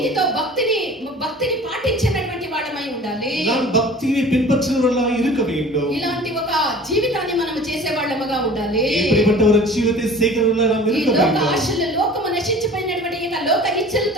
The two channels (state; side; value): normal; both; correlation 0.44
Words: భక్తిని పాటించినటువంటి వాళ్ళమై ఉండాలి. நாம் பக்தியை பின்பற்றுகிறவர்களாக இருக்க வேண்டும். ఇలాంటి ఒక జీవితాన్ని మనం చేసే వాళ్ళముగా ఉండాలి. இப்படிப்பட்ட ஒரு ஜீவித்தை செய்கிறவர்களாக நாம் ఈ இருக்க లోక வேண்டும். ఆశలు లోకము నశించిపోయినటువంటి ఈ లోక